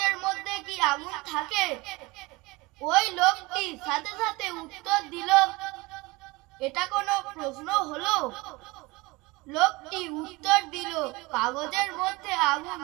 মধ্যে কি আগুন থাকে। ওই লোকটি সাথে সাথে উত্তর দিল, এটা কোনো প্রশ্ন হলো? লোকটি উত্তর দিল, কাগজের মধ্যে আগুন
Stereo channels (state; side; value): quieter; left; 23.2 dB